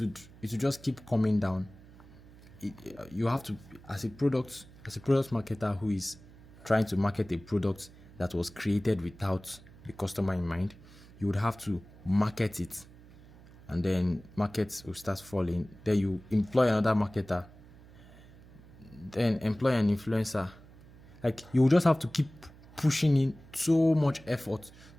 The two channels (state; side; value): noise; right; hum, 21 dB below the sound